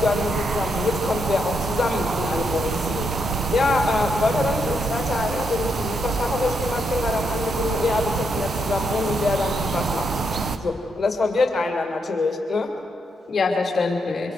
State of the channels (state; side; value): normal; both; correlation 0.79